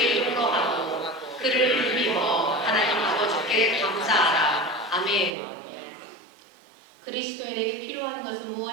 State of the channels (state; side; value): drops out; left; at 5.3 s